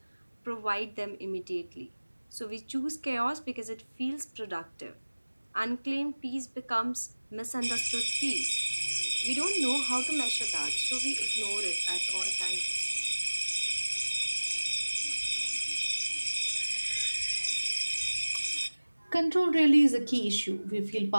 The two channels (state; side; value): inverted; both; correlation -1.00